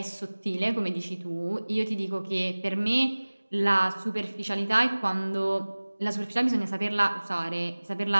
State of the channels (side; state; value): both; inverted; correlation -1.00